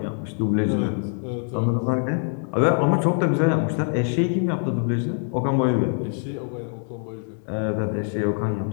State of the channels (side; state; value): right; silent; 55 dB below the other